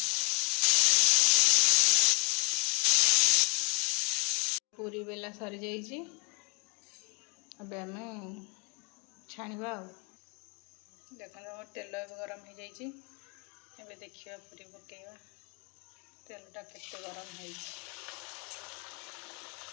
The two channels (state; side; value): quieter; right; 33.0 dB